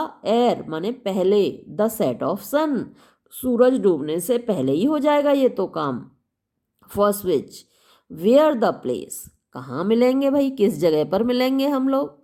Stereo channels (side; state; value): both; identical; correlation 1.00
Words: एर, माने पहले, द सेट ऑफ सन, सूरज डूबने से पहले ही हो जाएगा ये तो काम। First witch, where the place, कहाँ मिलेंगे भाई, किस जगह पर मिलेंगे हम लोग।